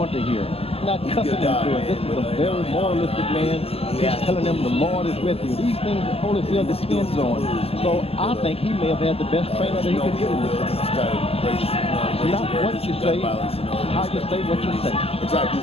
to hear, not cussing him through it. This is a very moralistic man. He's telling him the Lord is with you. These things that Holyfield depends on. So I think he may have had the best trainer that he could get in this thing. Not what you say, how you say what you say.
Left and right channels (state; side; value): late; right; 0.29 ms